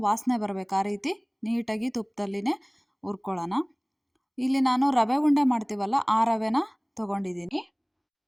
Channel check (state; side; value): identical; both; correlation 1.00